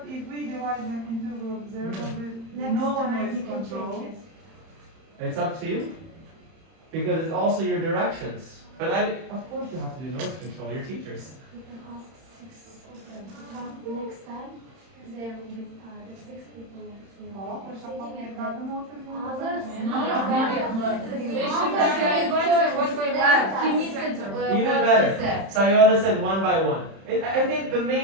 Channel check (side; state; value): left; late; 31 ms